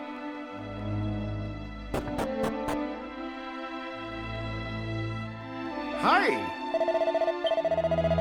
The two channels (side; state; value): both; identical; correlation 1.00